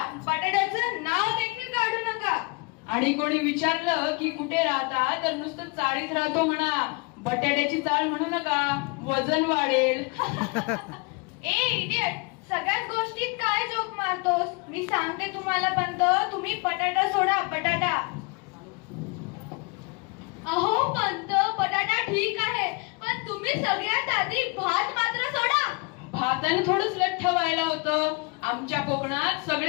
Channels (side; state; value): right; quieter; 29.2 dB